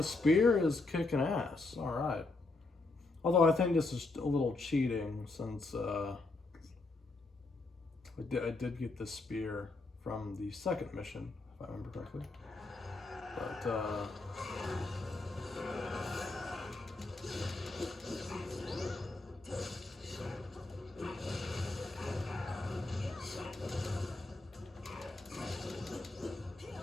spear is kicking ass. Alright. Although I think this is a little cheating, since I did get the spear from the second mission, if I remember correctly. But,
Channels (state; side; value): quieter; right; 3.3 dB